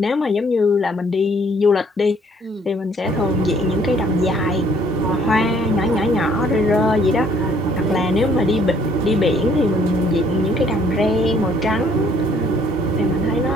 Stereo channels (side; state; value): both; normal; correlation 0.62